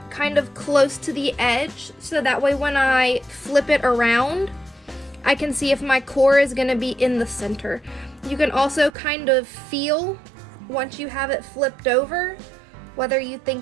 kind of close to the edge so that way when I flip it around, I can see if my core is going to be in the center. You can also kind of feel once you have it flipped over whether you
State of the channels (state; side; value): drops out; left; at 8.9 s